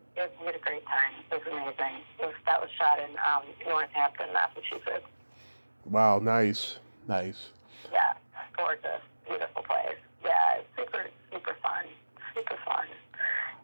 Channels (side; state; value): both; inverted; correlation -1.00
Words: had a great time. It was amazing. That was shot in Northampton, Massachusetts. Wow, nice. Yeah, gorgeous, beautiful place. Yeah, it's super, super fun.